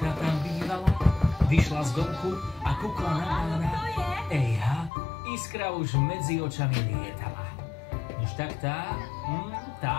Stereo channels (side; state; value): right; drops out; at 4.9 s